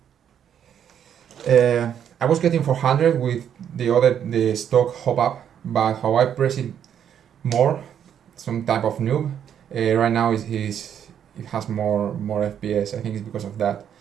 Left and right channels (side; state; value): left; quieter; 9.0 dB